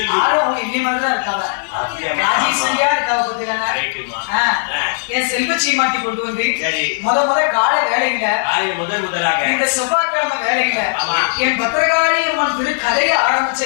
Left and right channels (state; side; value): silent; right; digital silence